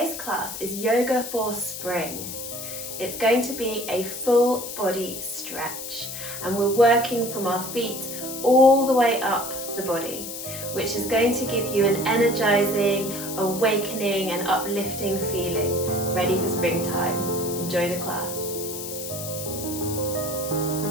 class is Yoga for Spring. It's going to be a full body stretch and we're working from our feet all the way up the body, which is going to give you an energizing, awakening and uplifting feeling, ready for springtime. Enjoy the class.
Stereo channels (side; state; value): left; noise; hiss, 8 dB below the sound